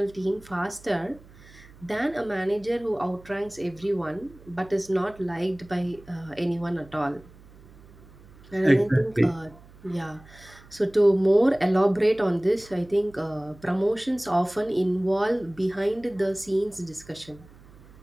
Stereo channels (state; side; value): noise; right; hum, 23 dB below the sound